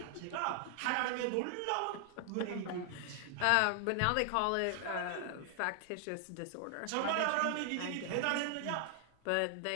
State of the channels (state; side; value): different; both; correlation 0.00